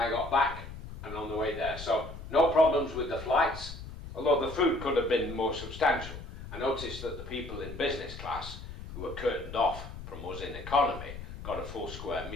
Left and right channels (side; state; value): left; noise; rumble, 11 dB below the sound